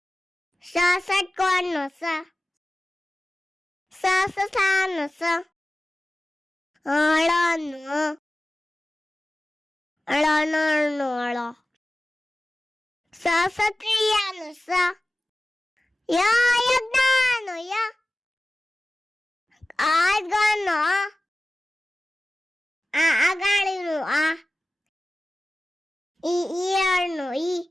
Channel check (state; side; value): normal; both; correlation 0.96